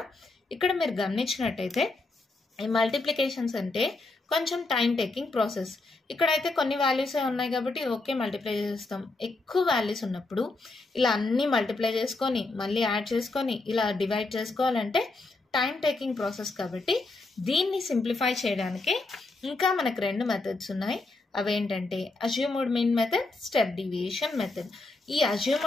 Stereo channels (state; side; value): quieter; right; 3.2 dB